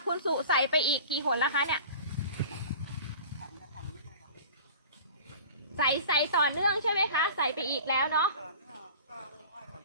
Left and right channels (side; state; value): both; inverted; correlation -0.40